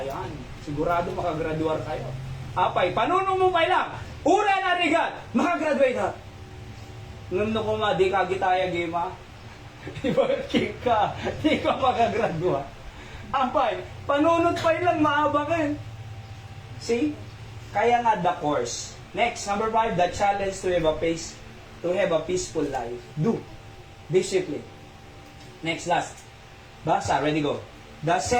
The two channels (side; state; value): both; identical; correlation 1.00